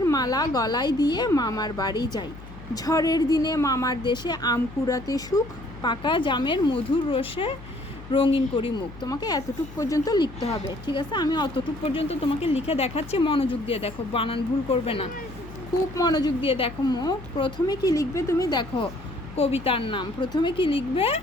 মালা গলায় দিয়ে মামার বাড়ি যাই। ঝড়ের দিনে মামার দেশে আম কুড়াতে সুখ, পাকা জামের মধুর রসে রঙিন করি মুখ। তোমাকে এতটুক পর্যন্ত লিখতে হবে, ঠিক আছে? আমি অতটুক পর্যন্ত তোমাকে লিখে দেখাচ্ছি, মনোযোগ দিয়ে দেখো, বানান ভুল করবে না, খুব মনোযোগ দিয়ে দেখো। প্রথমে কি লিখবে তুমি দেখো, কবিতার নাম। প্রথমে কি লিখবে?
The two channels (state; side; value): noise; left; hum, 16 dB below the sound